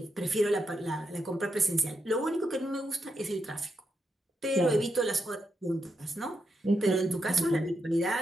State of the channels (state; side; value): normal; both; correlation 0.83